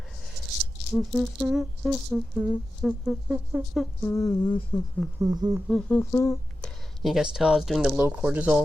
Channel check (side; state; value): both; normal; correlation 0.92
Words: You guys tell I was doing the low